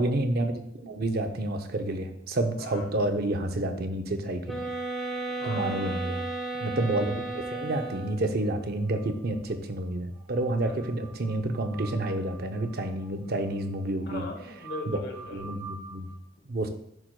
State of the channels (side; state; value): both; normal; correlation 0.50